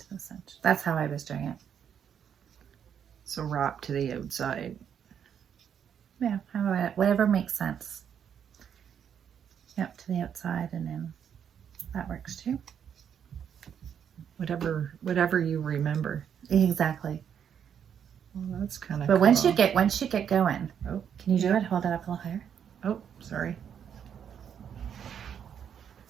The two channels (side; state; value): left; quieter; 8.3 dB